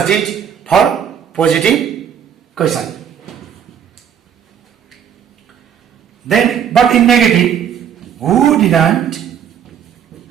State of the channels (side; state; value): left; quieter; 8.5 dB